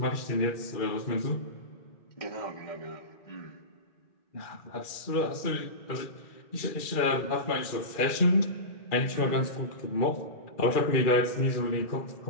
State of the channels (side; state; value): right; late; 2.4 ms